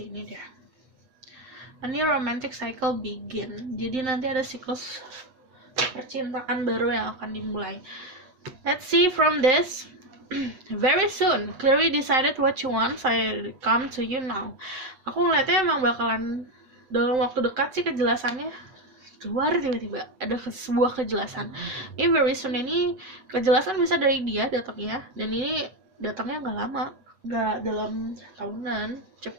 deh. A new romantic cycle begin. Jadi nanti ada siklus percintaan baru yang akan dimulai. Let's see from this. Very soon, clearly decided what you want. I come to you now. Aku ngeliatnya emang bakalan dalam waktu dekat sih kejelasannya keluar, tiba-tiba ada sebuah kejelasan. Ini very soon ini kejelasan bisa dari dia datangnya, dan ini datangnya nggak lama, nggak dalam tahunan,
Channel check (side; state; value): left; late; 7.8 ms